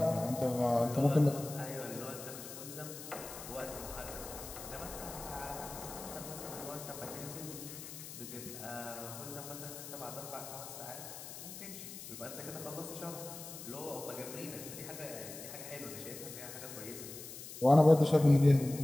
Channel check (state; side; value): noise; left; hiss, 11 dB below the sound